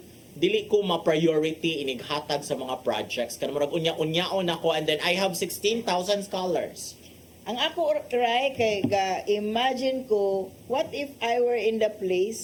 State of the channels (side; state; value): both; identical; correlation 1.00